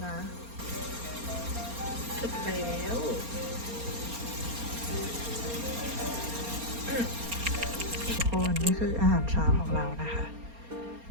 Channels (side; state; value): left; late; 4.3 ms